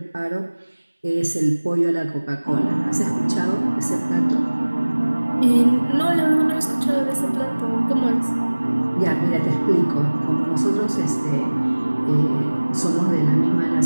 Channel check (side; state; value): both; inverted; correlation -1.00